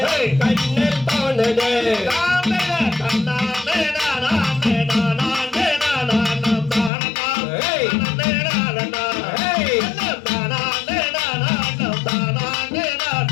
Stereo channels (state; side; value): drops out; right; at 6.9 s